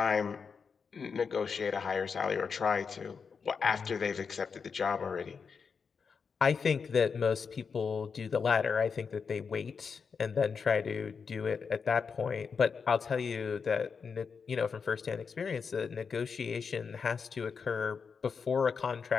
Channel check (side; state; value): right; quieter; 5.7 dB